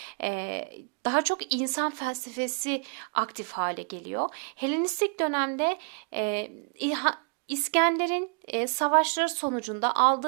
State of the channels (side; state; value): left; quieter; 37.1 dB